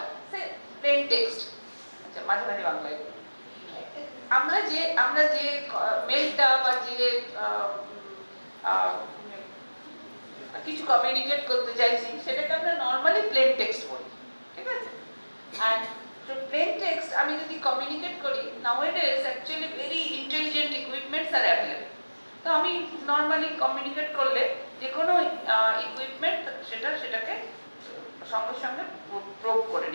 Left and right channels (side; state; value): both; inverted; correlation -1.00